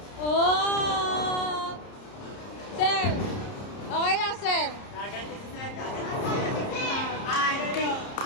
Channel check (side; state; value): right; late; 30 ms